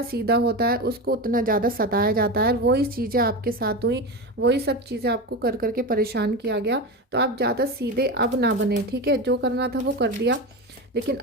सीधा होता है उसको उतना ज़्यादा सताया जाता है। और वही चीज़ें आपके साथ हुई, वही सब चीज़ें आपको कर करके परेशान किया गया। तो आप ज़्यादा सीधे अब ना बने, ठीक है। जो करना था वो कर दिया, लेकिन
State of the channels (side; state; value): both; normal; correlation 0.21